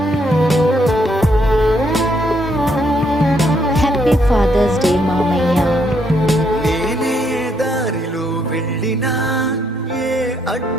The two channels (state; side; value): normal; both; correlation 0.73